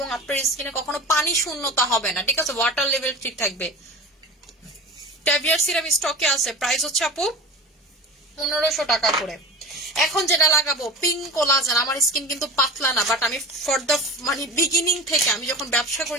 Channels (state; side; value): normal; both; correlation 0.33